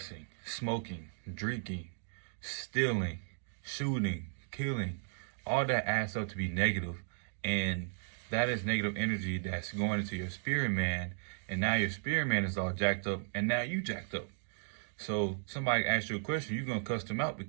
smoking, drinking, stealing, shooting, killing. All that adds up to be negative, and that is negative energy that's going into your spirit man, and now your spirit man is all jacked up, and now you jacked up. So somebody asks you a question, you're gonna cuss them out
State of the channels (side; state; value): left; silent; digital silence